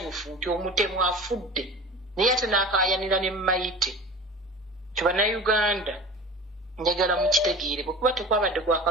nti omutemu afudde naye ate n'akaayanira ne Mayite kibannayuganda njagala mukitegeere bwekuba tekwabadde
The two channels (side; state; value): both; normal; correlation 0.37